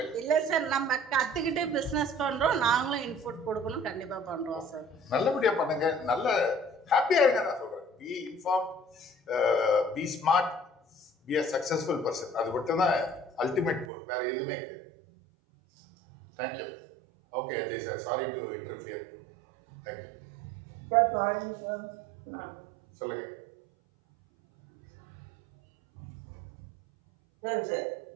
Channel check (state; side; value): drops out; left; at 13.9 s